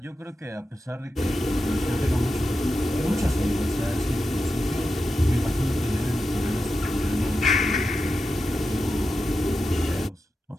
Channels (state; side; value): normal; both; correlation 0.90